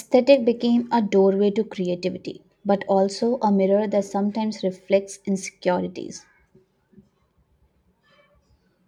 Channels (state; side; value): identical; both; correlation 1.00